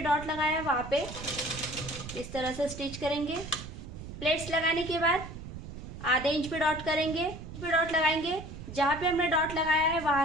लगाया है वहाँ पे इस तरह से स्टिच करेंगे। प्लेट्स लगाने के बाद आधे इंच पे डॉट करेंगे, पे डॉट लगाएंगे। जहाँ पे हमने डॉट लगाया है वहाँ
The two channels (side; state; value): right; noise; rumble, 11 dB below the sound